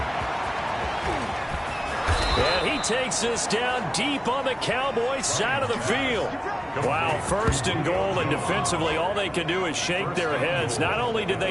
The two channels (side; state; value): both; identical; correlation 1.00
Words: And he takes this down deep on the Cowboys' side of the field. Wow, first and goal, and defensively, all they can do is shake their heads. Not only did